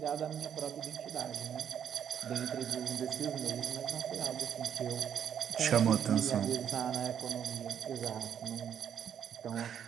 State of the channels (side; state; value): left; quieter; 8.7 dB